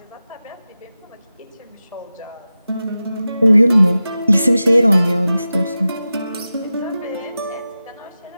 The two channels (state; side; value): inverted; both; correlation -0.94